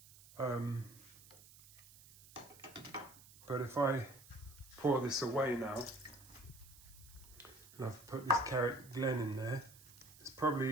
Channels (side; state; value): right; noise; hiss, 21 dB below the sound